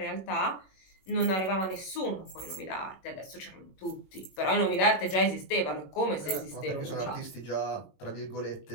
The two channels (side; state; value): right; late; 21 ms